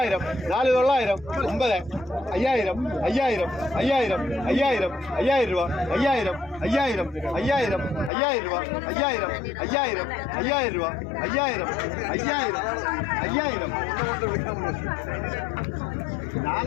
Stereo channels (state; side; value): drops out; right; at 8.1 s